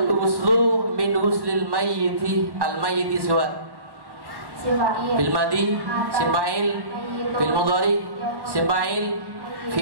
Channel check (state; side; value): late; left; 1.1 ms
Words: wuslu min huslil mayyiti al mayyiti siwat fil madi sifail fil mudhari sifail